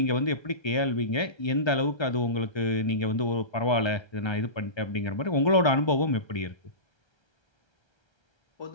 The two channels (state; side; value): late; right; 1.3 ms